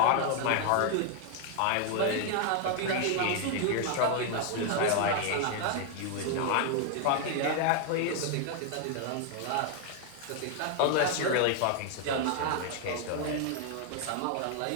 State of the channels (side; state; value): both; different; correlation 0.00